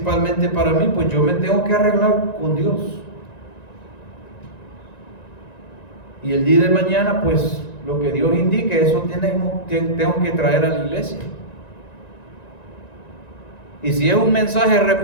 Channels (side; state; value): right; late; 1.9 ms